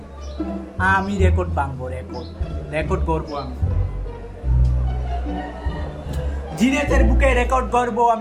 আমি রেকর্ড ভাঙবো, রেকর্ড করবো আমি। জিনেতের বুকে রেকর্ড করবো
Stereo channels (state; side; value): identical; both; correlation 1.00